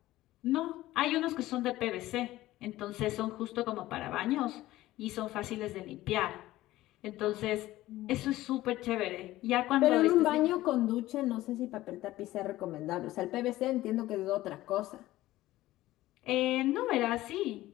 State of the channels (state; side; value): quieter; right; 16.3 dB